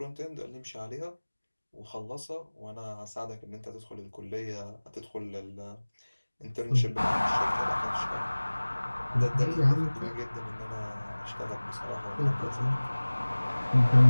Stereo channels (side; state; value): both; inverted; correlation -1.00